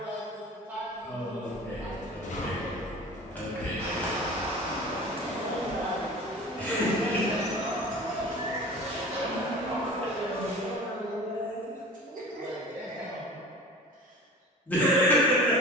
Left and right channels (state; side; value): normal; both; correlation 0.39